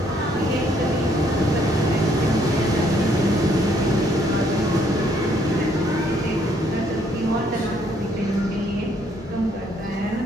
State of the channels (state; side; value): normal; both; correlation 0.68